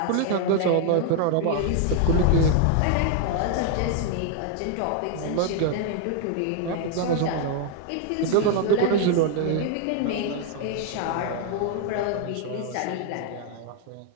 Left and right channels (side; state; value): both; different; correlation 0.00